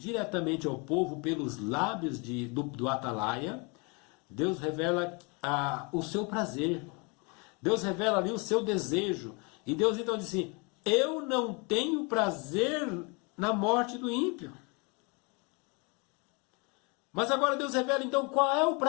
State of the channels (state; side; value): quieter; right; 31.3 dB